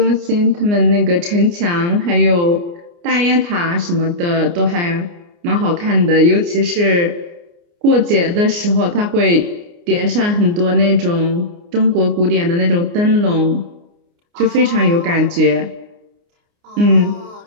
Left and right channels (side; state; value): left; late; 29 ms